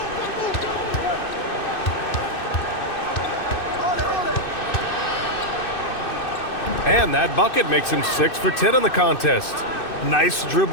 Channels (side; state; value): right; late; 2.6 ms